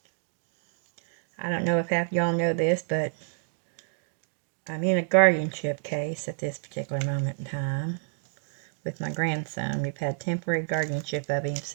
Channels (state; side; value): silent; left; digital silence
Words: I don't know if half y'all know this, but I'm in a guardianship case at this particular moment in time with my grandson. We've had temporary guardianship of him